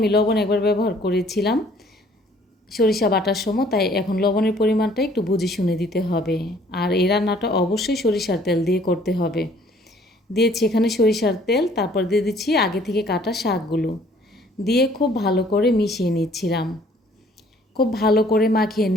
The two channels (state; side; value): normal; both; correlation 0.58